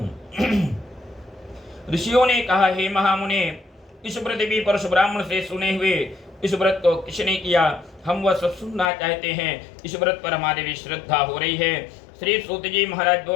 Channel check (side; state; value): right; drops out; at 8.8 s